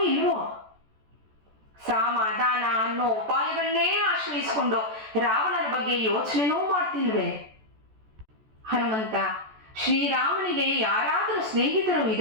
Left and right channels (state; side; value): late; left; 14 ms